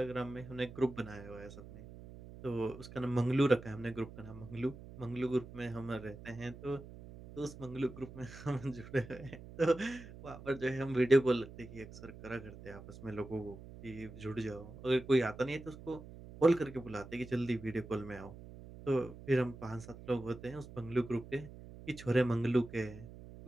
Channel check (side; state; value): right; noise; hum, 15 dB below the sound